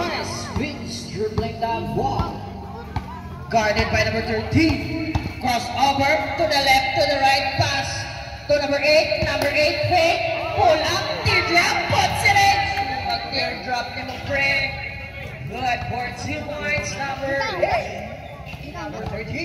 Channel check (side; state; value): both; identical; correlation 1.00